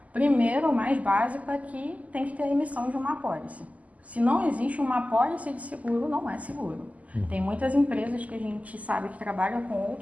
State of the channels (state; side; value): late; left; 0.073 ms